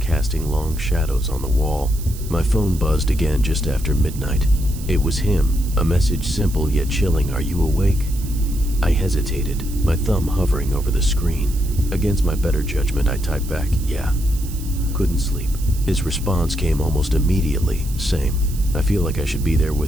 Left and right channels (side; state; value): right; noise; hiss, 16 dB below the sound